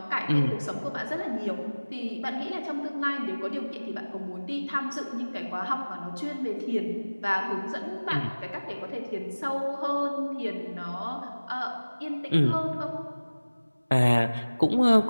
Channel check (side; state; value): both; inverted; correlation -1.00